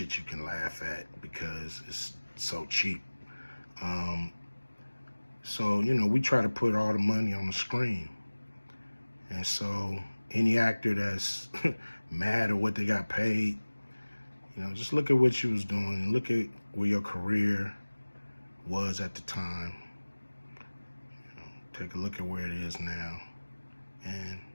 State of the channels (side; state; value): both; inverted; correlation -1.00